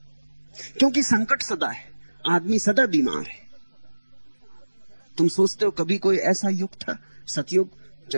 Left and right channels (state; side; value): inverted; both; correlation -1.00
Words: क्योंकि संकट सदा है, आदमी सदा बीमार है। तुम सोचते हो कभी कोई ऐसा युग था, सतयुग,